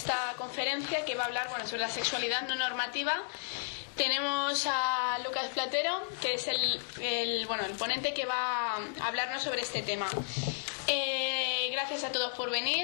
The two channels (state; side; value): silent; right; digital silence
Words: conferencia que va a hablar sobre la sexualidad no normativa. Tenemos a Lucas Platero, que es el ponente que va a hablarnos sobre este tema. Gracias a todos por